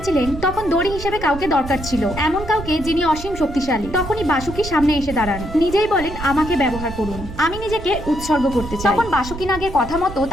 তখন দড়ি হিসেবে কাউকে দরকার ছিল, এমন কাউকে যিনি অসীম শক্তিশালী। তখনই বাসুকি সামনে এসে দাঁড়ান, নিজেই বলেন আমাকে ব্যবহার করুন, আমি নিজেকে উৎসর্গ করতে চাই। তখন বাসুকি নাগের কথা মতো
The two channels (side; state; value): right; noise; rumble, 11 dB below the sound